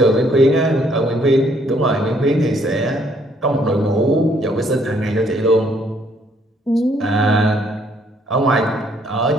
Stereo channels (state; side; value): normal; both; correlation 0.67